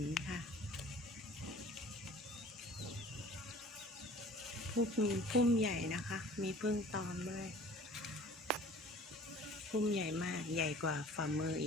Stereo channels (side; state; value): both; normal; correlation 0.47